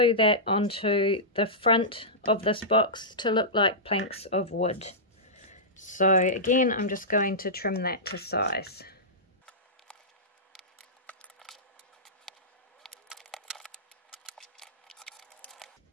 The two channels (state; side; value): normal; both; correlation -0.14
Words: that onto the front of this box to look like planks of wood. So again, I'm just going to trim that to size.